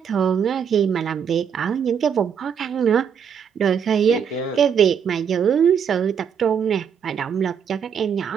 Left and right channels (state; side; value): quieter; left; 7.5 dB